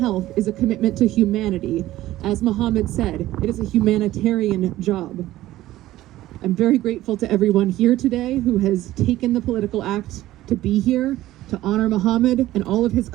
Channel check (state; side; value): quieter; left; 15.3 dB